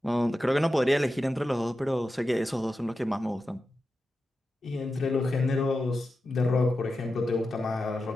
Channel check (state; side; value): normal; both; correlation 0.91